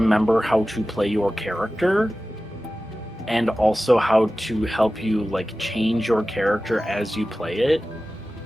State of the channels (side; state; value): both; normal; correlation 0.95